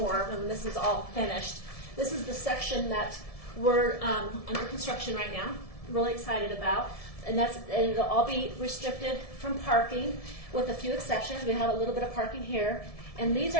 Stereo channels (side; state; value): right; late; 1.7 ms